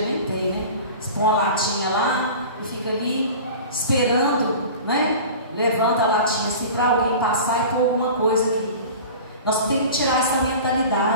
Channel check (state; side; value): inverted; both; correlation -0.37